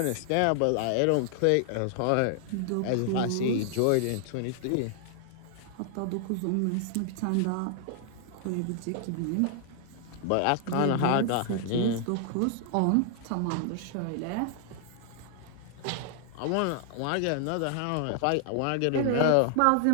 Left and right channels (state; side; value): different; both; correlation 0.00